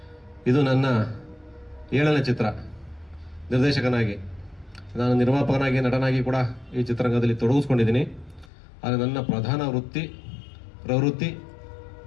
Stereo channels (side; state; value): right; drops out; at 8.5 s